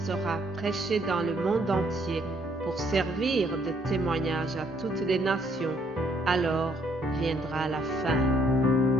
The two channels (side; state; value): both; normal; correlation 0.68